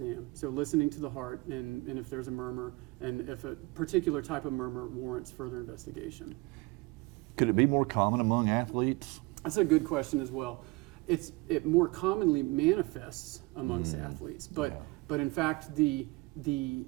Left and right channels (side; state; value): left; quieter; 23.7 dB